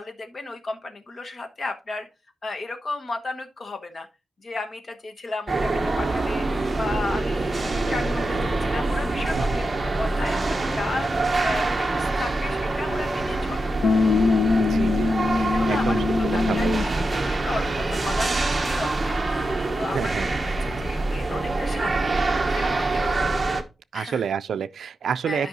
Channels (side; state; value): both; normal; correlation 0.89